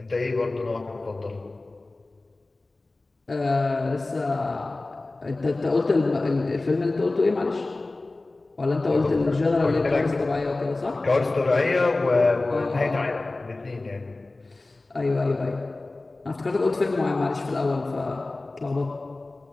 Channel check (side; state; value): right; quieter; 3.1 dB